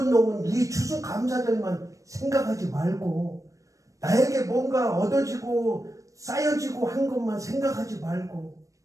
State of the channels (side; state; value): left; late; 0.16 ms